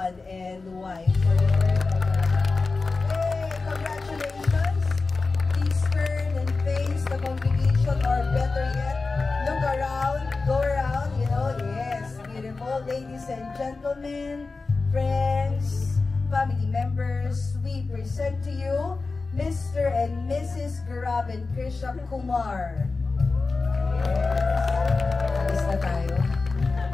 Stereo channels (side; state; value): right; quieter; 3.9 dB